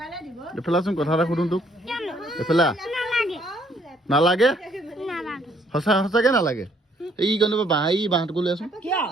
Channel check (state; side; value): normal; both; correlation 0.66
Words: এফালাচোন কথা এটা সুধো তোক এফালা নালাগে সঁচা সঁচাকে নালাগে এই গণ বাঁহ এই বাঁহটো লৈ আছোন